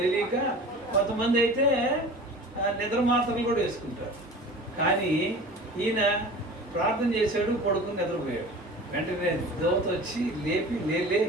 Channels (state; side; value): normal; both; correlation 0.39